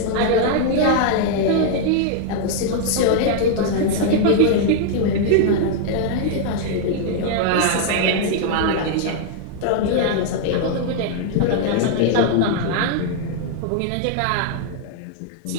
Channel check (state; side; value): different; both; correlation -0.01